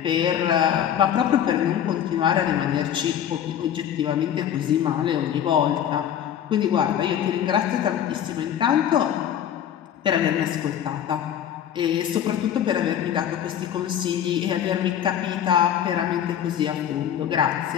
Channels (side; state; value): right; quieter; 9.8 dB